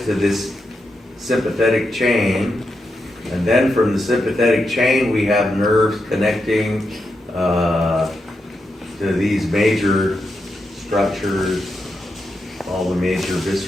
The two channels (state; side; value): normal; both; correlation 0.85